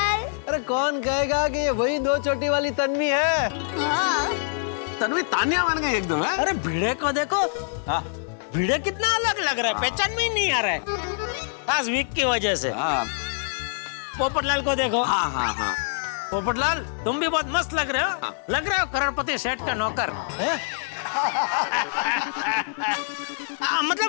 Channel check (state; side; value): silent; right; 62 dB below the other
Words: अरे कौन कहेगा कि ये वही दो चोटी वाली तन्वी है? हाँ। तन्वी तानिया बन गई एकदम है। अरे भिड़े को देखो, भिड़े कितना अलग लग रहा है, पहचान में ही नहीं आ रहा है खास वीक की वजह से। पोपटलाल को देखो। हाँ पोपटलाल तुम भी बहुत मस्त लग रहे हो। लग रहे हो करोड़पति सेठ का नौकर है?